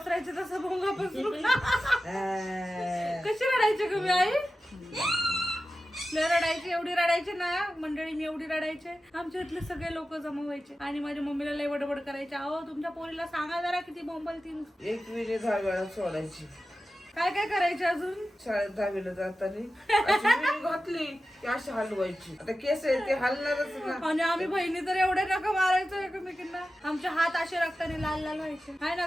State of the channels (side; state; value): both; normal; correlation 0.93